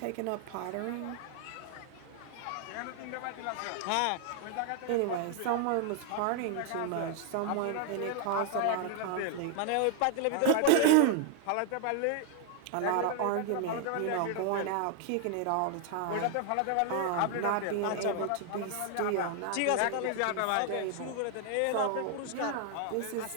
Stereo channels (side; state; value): both; different; correlation 0.00